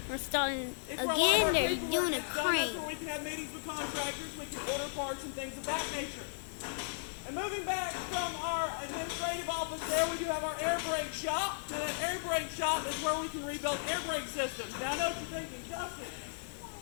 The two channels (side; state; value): right; silent; 54 dB below the other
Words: We're starting It's where again. They're paperwork doing a gets done. That's crane. where we can have meetings with contractors. We can order parts and things of that nature. And moving back from our administrative office there, we do have our air brake shop. Now that air brake shop is where we can rebuild air brake systems. Now I know what you're thinking, Justin,